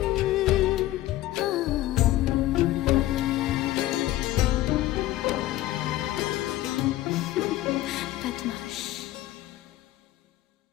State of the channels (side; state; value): right; quieter; 15.6 dB